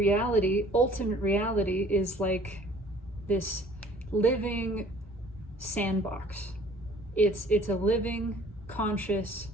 ultimate reality, is like this living sandbox. It's a living, conscious,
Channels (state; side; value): normal; both; correlation 0.53